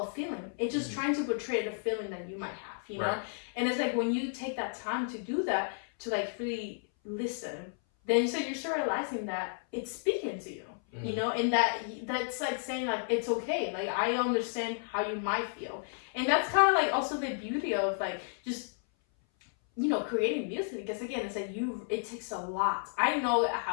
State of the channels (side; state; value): right; silent; 56 dB below the other